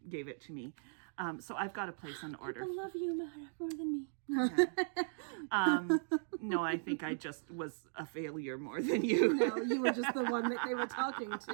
gave it to me. So I've got to place an order. People love you more than me. Okay. No, I think I just was a failure more than you. No, you were just the one that they were talking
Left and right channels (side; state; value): left; silent; digital silence